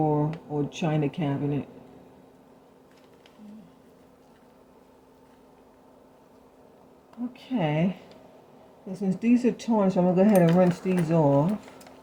or china cabinet. Okay. So since these are tarnished, I'm going to go ahead and rinse these off.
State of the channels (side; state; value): both; identical; correlation 1.00